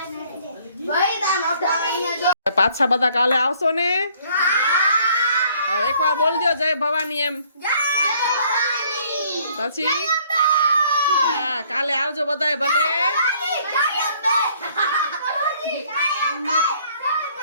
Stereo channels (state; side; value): inverted; both; correlation -0.62